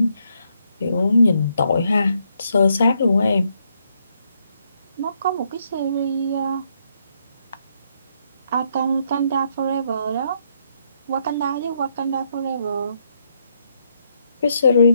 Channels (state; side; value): inverted; both; correlation -0.75